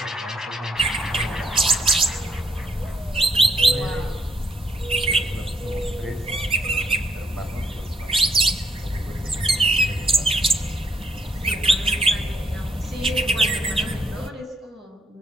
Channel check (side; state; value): both; normal; correlation 0.74